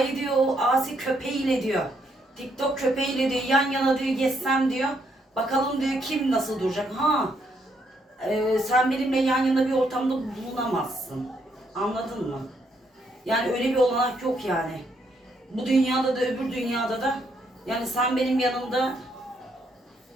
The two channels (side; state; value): both; normal; correlation 0.74